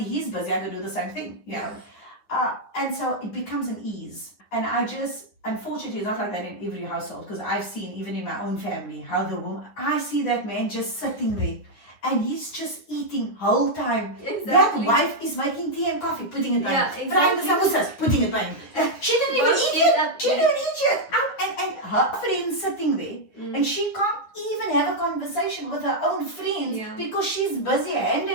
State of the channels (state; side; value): late; right; 9.6 ms